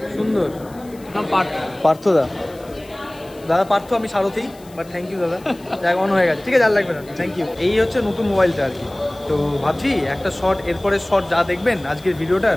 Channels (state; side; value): noise; left; hiss, 25 dB below the sound